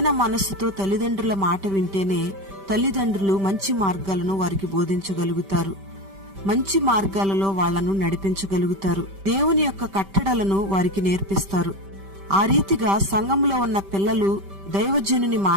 మనస్సుతో తల్లిదండ్రుల మాట వింటేనే తల్లిదండ్రులు మంచి మార్గాలను వారికి బోధించగలుగుతారు. మంచి మార్గాలలో వాళ్లను నడిపించగలుగుతారు. దేవుని యొక్క కట్టడలను వారికి నేర్పిస్తారు. ఆ రీతిగా సంఘంలో ఉన్న పిల్లలు దైవజనుని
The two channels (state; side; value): late; left; 5.1 ms